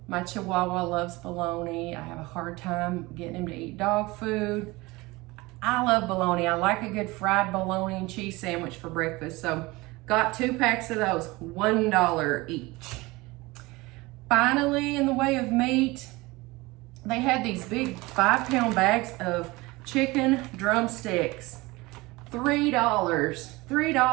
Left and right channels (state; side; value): quieter; left; 22.1 dB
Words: My Chihuahua loves bologna. I have a hard time getting him to eat dog food. I love bologna. I like a good fried bologna and cheese sandwich for breakfast. So got 2 packs of those, $1 each. Finally, in the way of meat, they had these big 5-pound bags of chicken drumsticks.